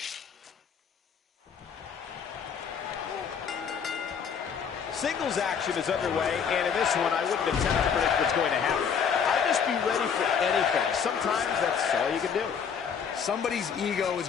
Singles action is underway, and in this one, I wouldn't attempt to predict what's going to happen. I'd just be ready for anything. Sometimes that's all you can do. Somebody's ego is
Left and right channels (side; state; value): right; quieter; 7.0 dB